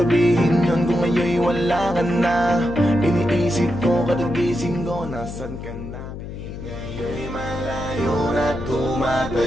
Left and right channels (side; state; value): left; noise; hum, 9 dB below the sound